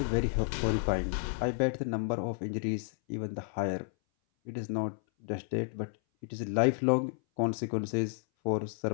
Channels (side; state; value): right; silent; 57 dB below the other